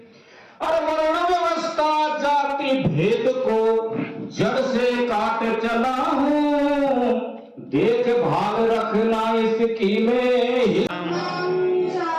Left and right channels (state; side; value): identical; both; correlation 1.00